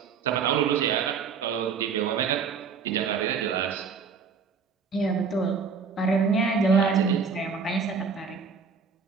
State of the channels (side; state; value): left; quieter; 5.8 dB